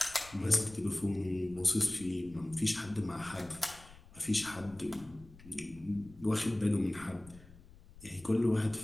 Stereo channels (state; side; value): noise; left; rumble, 21 dB below the sound